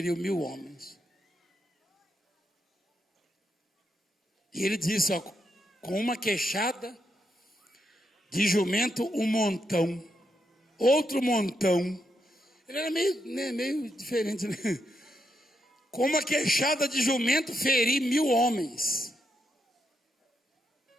1000 homens. E ele disse, ó, com uma queixada de jumento, um montão, outro montão. Ele era meio diferente, né? Com uma queixada de jumento, feri 1000 homens.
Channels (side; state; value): both; normal; correlation 0.81